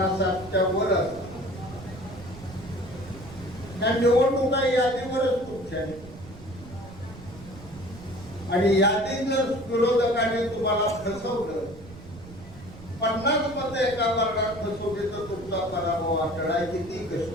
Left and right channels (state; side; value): noise; right; rumble, 17 dB below the sound